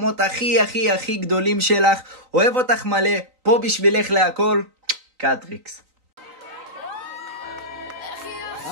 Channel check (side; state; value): left; late; 3.9 ms